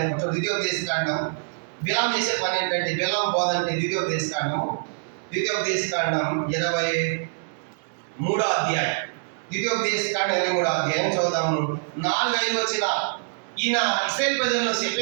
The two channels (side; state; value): left; silent; digital silence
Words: ద్వితీయోపదేశకాండం బిలాము చేసే పని ఏంటంటే, బిలాము బోధ అంటే ద్వితీయోపదేశకాండం 23వ అధ్యాయం. ద్వితీయోపదేశకాండం 23వ అధ్యాయం చదువుదాము. 4-5 వచ్చిన ఈయన ఇశ్రాయేలు ప్రజలను